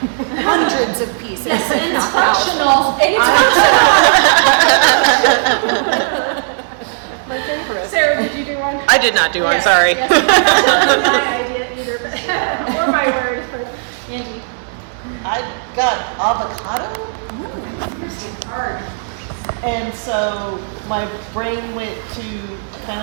Hundreds of pieces, Yes, and it's not thousands. functional. My favorite. Sarah, did you do one? I did not do one, Yes, sorry. Yes, I did either. Or my words, but Angie. I got avocado. Hard. And so my brain went to kind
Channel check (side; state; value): left; silent; 62 dB below the other